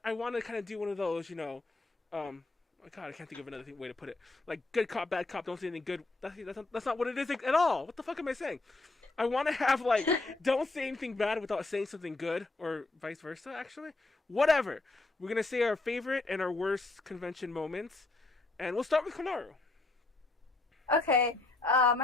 kind of do one of those, oh god, I can't think of another way to put it. Like good cop, bad cop, don't say anything good. That's not what it is at all. What the fuck am I saying? I want to have, like, don't say anything bad without saying something good, or vice versa, actually. Whatever. We're going to say our favorite and our worst convention moments. And we'll start with Konaru. Okay.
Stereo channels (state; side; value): quieter; right; 3.3 dB